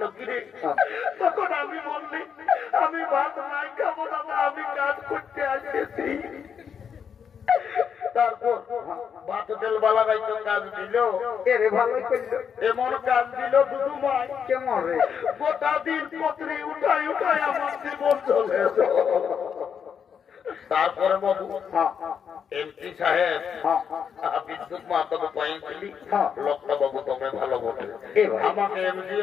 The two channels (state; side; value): quieter; right; 7.3 dB